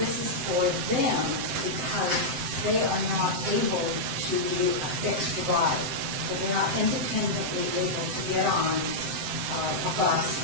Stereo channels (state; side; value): late; left; 7.8 ms